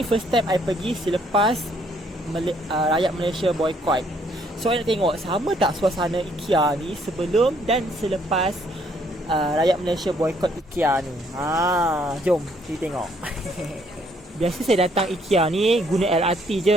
time I pergi selepas rakyat Malaysia boikot. So I nak tengok sama tak suasana Ikea ni sebelum dan selepas rakyat Malaysia boikot Ikea ni. Jom kita tengok. Biasa saya datang Ikea ni guna LRT je,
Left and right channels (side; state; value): both; normal; correlation 0.67